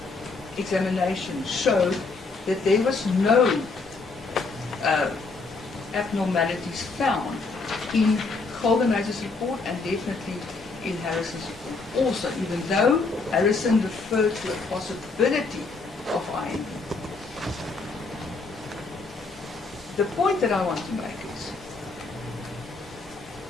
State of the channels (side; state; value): right; quieter; 4.0 dB